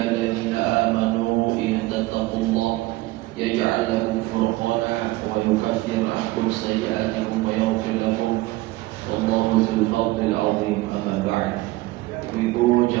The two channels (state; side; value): quieter; left; 19.5 dB